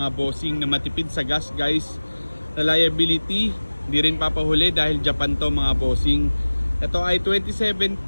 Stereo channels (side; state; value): both; inverted; correlation -1.00